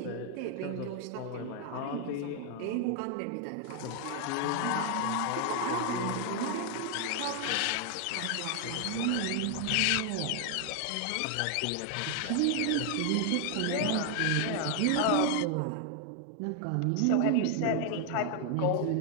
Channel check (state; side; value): different; both; correlation 0.00